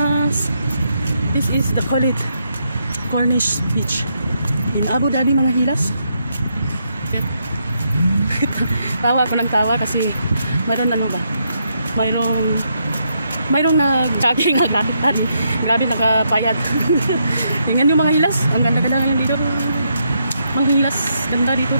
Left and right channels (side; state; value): both; inverted; correlation -0.79